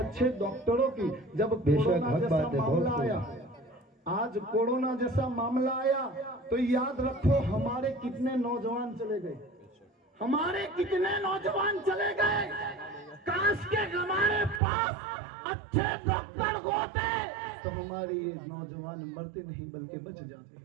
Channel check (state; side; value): drops out; left; at 14.6 s